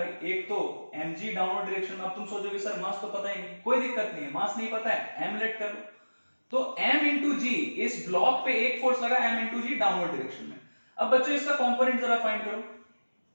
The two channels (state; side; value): inverted; both; correlation -1.00